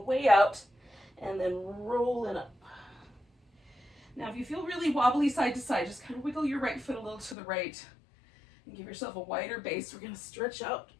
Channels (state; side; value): drops out; right; at 7.4 s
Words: way out and then rolling up. Now, if you feel really wobbly side to side, just kind of wiggle your right foot a little to the right and give yourself a wider base. We're gonna stretch out